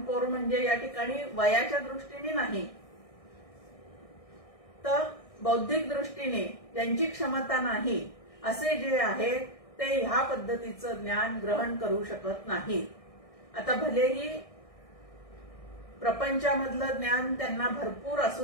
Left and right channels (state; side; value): late; right; 1.6 ms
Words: पोर म्हणजे या ठिकाणी वयाच्या दृष्टीने नाही, तर बौद्धिक दृष्टीने ज्यांची क्षमता नाही असे जे आहेत ते ह्या पद्धतीचं ज्ञान ग्रहण करू शकत नाही. आता भलेही प्रपंचामधलं ज्ञान त्यांना भरपूर